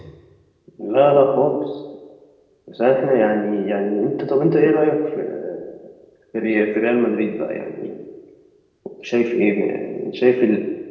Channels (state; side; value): identical; both; correlation 1.00